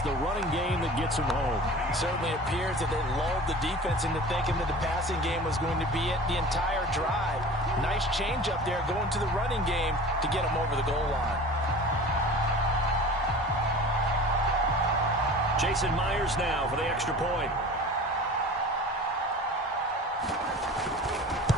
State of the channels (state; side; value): normal; both; correlation 0.40